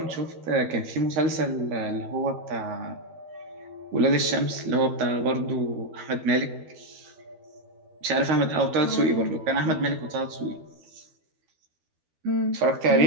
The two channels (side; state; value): left; late; 12 ms